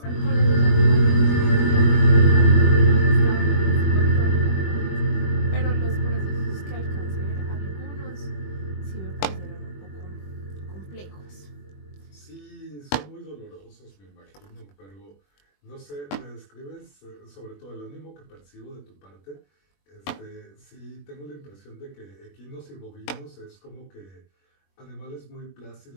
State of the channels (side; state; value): right; late; 21 ms